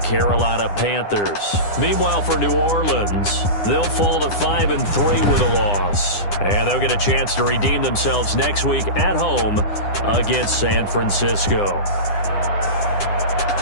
Panthers. Meanwhile, for New Orleans, they'll fall to 5-3 with a loss. And they'll get a chance to redeem themselves next week at home against San Francisco.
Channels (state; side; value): late; right; 9.9 ms